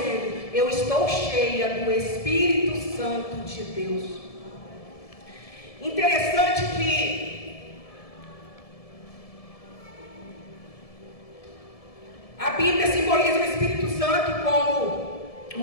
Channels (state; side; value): late; right; 1.7 ms